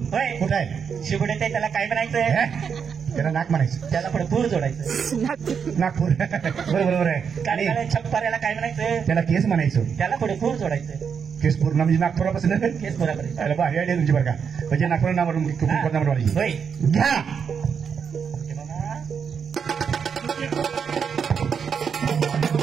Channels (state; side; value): quieter; left; 6.7 dB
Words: होय. कुठं आहे? शिवडे ते त्याला काय म्हणायचं? हे? त्याला नाक म्हणायचं. त्याला पुढे पूर जोडायचं. नागपूर बरोबर आहे. आणि कानाला छप्पाऱ्याला काय म्हणायचं? त्याला केस म्हणायचं. त्याला पुढे पूर जोडायचं. केस पूर्ण म्हणजे नागपुरापासून केसपुरापर्यंत. त्याला भारी आयडिया तुमची बरं का? म्हणजे नागपूर नावावरून कुंकू नावावरून होय. घ्या. हे बघा.